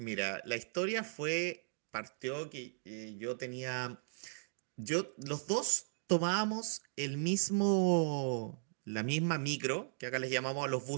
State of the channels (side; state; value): left; silent; digital silence